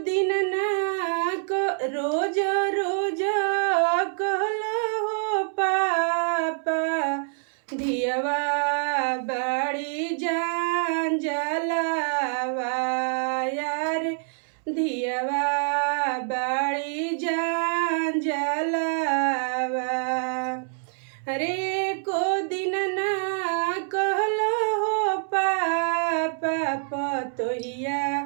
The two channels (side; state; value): left; silent; 61 dB below the other